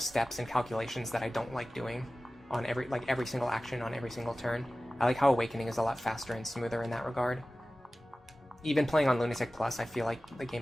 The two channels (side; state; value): both; normal; correlation 0.96